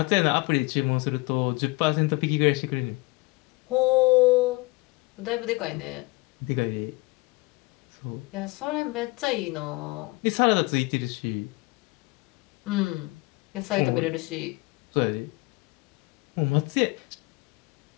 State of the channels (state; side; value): quieter; right; 23.8 dB